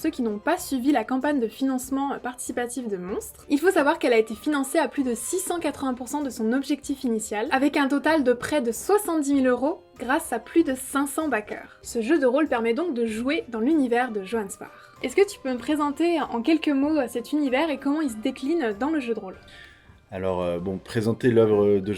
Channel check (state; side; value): identical; both; correlation 1.00